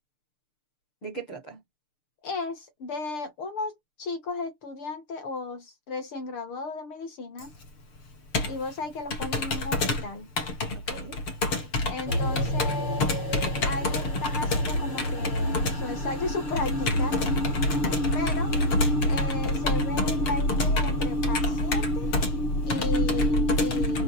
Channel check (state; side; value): late; right; 6.7 ms